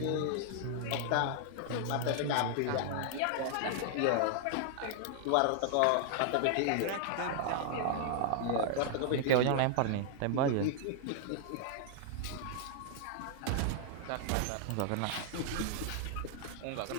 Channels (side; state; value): both; different; correlation 0.00